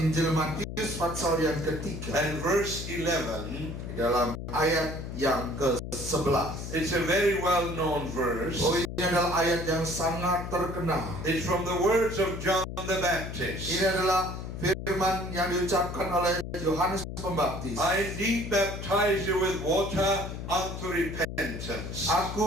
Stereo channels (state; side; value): noise; left; hum, 7 dB below the sound